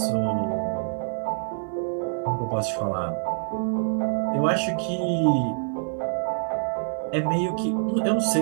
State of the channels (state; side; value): silent; left; digital silence